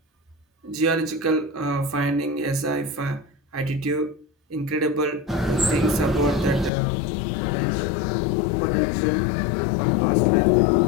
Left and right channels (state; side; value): drops out; right; at 6.7 s